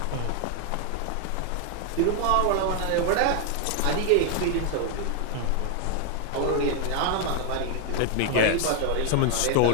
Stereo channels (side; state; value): both; different; correlation 0.00